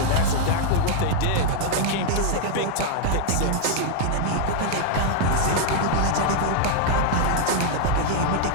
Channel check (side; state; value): both; different; correlation 0.00